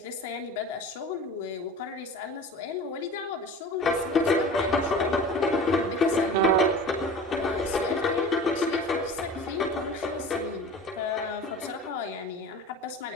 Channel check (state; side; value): normal; both; correlation 0.38